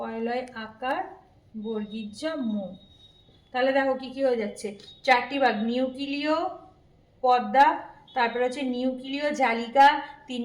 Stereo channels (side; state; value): both; identical; correlation 1.00